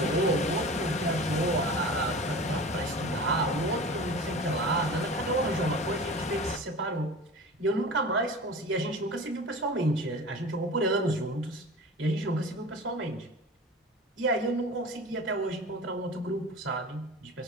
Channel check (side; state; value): both; normal; correlation 0.36